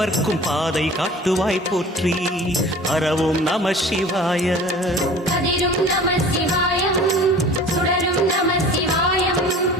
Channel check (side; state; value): both; normal; correlation 0.43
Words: பாதை காட்டுவாய் போற்றி ஹரவோம் நம சிவாய கதிரும் நம சிவாயம் சுடரும் நம சிவாயம்